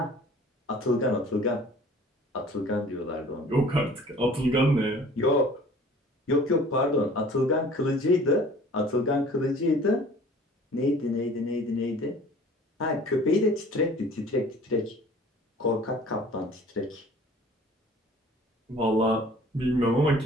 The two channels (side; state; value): both; normal; correlation 0.49